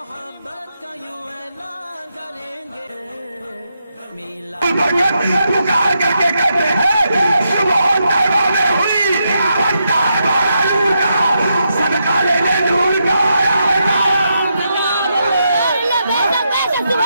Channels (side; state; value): both; inverted; correlation -0.82